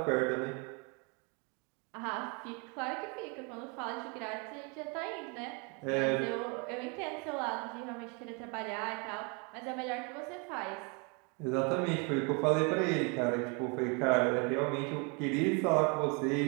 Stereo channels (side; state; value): left; quieter; 33.3 dB